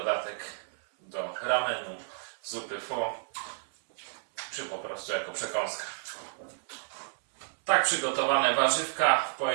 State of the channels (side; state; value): left; silent; 57 dB below the other